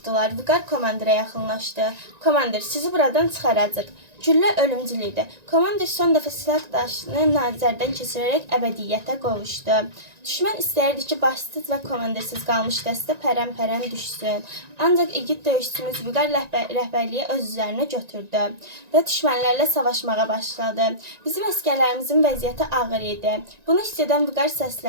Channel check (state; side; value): late; left; 1.9 ms